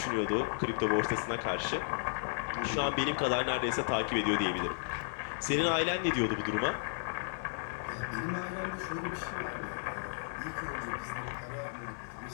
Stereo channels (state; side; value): silent; right; digital silence